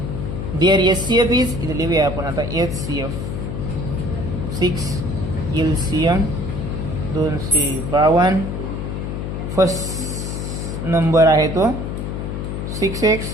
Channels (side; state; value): left; noise; hum, 4 dB below the sound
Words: Their SCF is इथे लिहूया आपण आता HCF 6 LCM 252. फर्स्ट नंबर आहे तो 6x